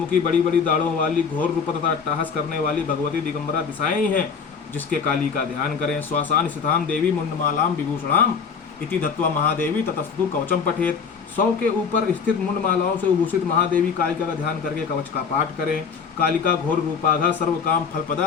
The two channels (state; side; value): quieter; right; 5.9 dB